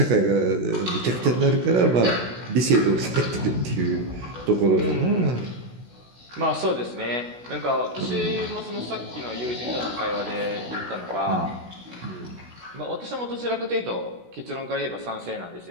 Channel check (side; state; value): left; late; 16 ms